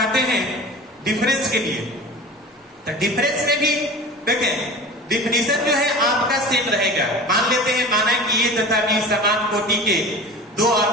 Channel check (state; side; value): normal; both; correlation 0.36